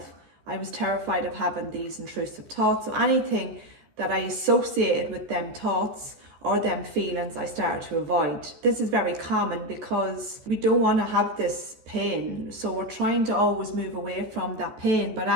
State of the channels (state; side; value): late; left; 14 ms